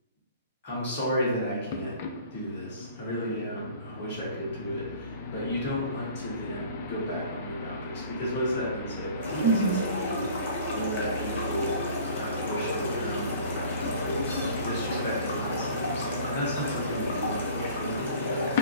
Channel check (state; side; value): inverted; both; correlation -0.48